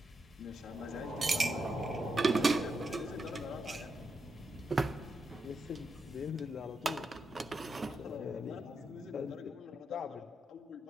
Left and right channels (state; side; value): normal; both; correlation 0.84